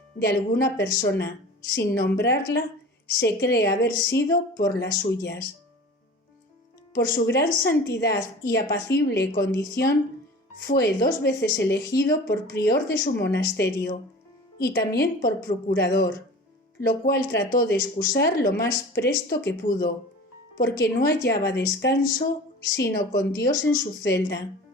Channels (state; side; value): normal; both; correlation 0.39